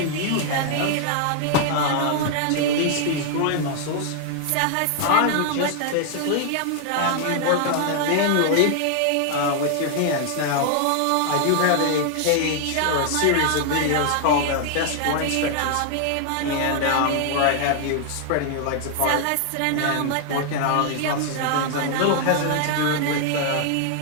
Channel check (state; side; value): different; both; correlation 0.00